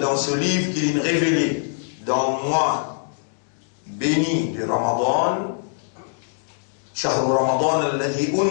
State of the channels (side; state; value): right; silent; digital silence